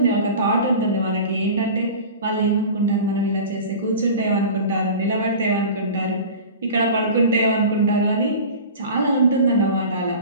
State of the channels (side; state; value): both; inverted; correlation -0.36